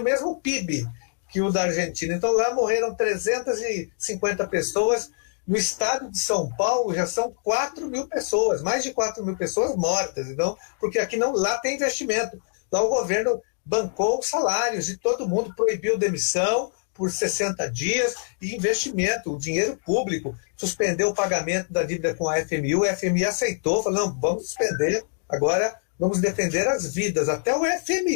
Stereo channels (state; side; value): silent; right; digital silence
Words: mesmo PIB que o da Argentina. Então lá morreram 350 pessoas. No estado de São Paulo já são 4.000 pessoas, mais de 4.000 pessoas mortas. Então, porque aqui lá tem investimento. Lá o governo bancou os salários de todo mundo, proibiu demissão, por 60 dias e investimento, o dinheiro público, suspendeu o pagamento da dívida com a FMI, o FMI aceitou, falou, não, vamos suspender, agora vamos defender as vidas, até o